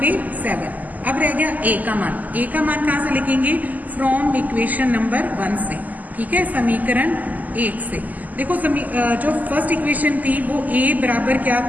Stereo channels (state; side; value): late; left; 0.080 ms